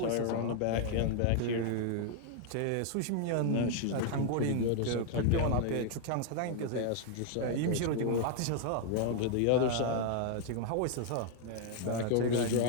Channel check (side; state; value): both; different; correlation 0.00